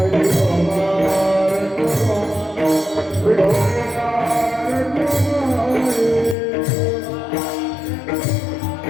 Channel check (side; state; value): right; drops out; at 6.4 s